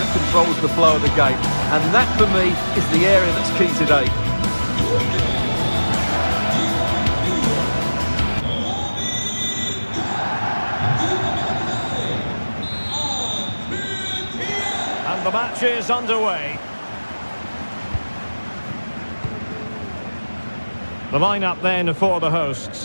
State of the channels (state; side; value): inverted; both; correlation -1.00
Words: controls the flow of the game. And that, for me, is the area that's key today. And the match is underway. The lineup then for the